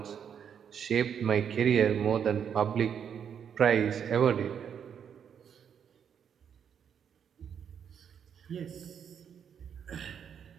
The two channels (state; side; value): quieter; left; 8.0 dB